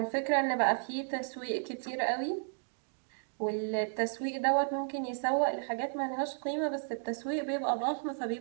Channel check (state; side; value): silent; left; digital silence